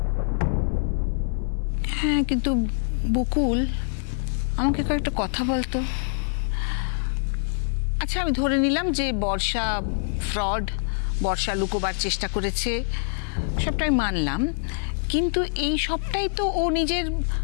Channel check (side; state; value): right; silent; 62 dB below the other